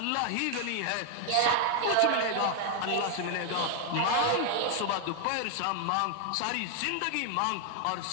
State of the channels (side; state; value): both; different; correlation 0.00